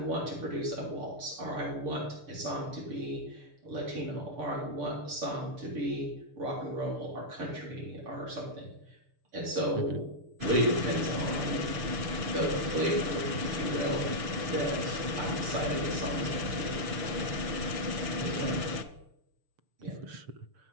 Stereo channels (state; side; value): late; left; 6.7 ms